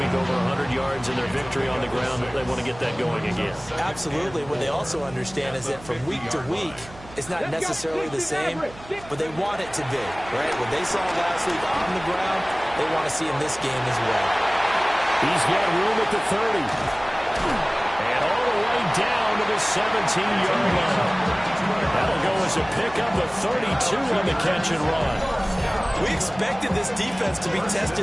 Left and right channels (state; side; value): noise; right; hum, 18 dB below the sound